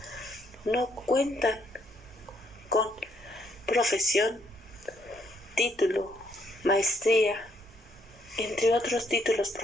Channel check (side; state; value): both; normal; correlation 0.72